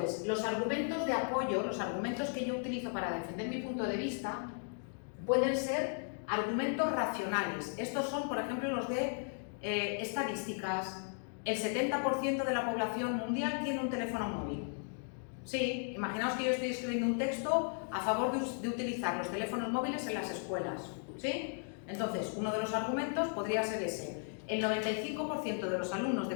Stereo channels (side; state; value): right; silent; 54 dB below the other